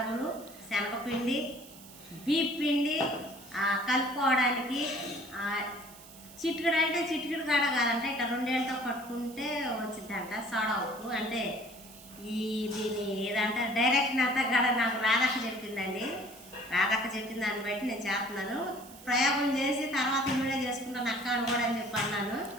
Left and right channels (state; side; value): noise; right; hiss, 19 dB below the sound